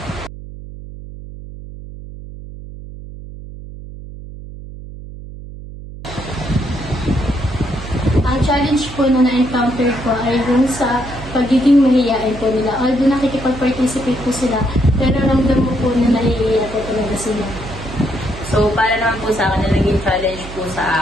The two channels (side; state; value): right; noise; hum, 13 dB below the sound